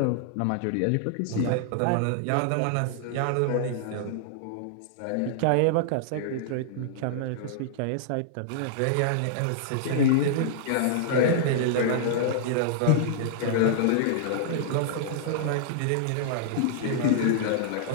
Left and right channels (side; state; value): both; different; correlation -0.01